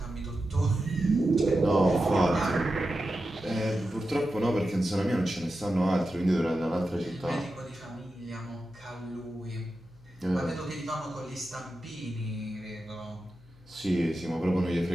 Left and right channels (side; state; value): left; noise; hum, 25 dB below the sound